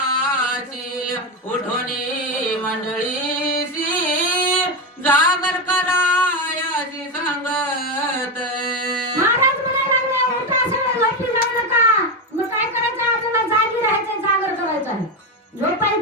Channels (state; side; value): normal; both; correlation 0.12